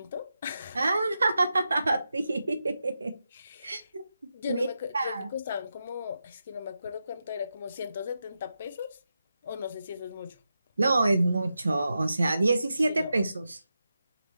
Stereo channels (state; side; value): inverted; both; correlation -0.88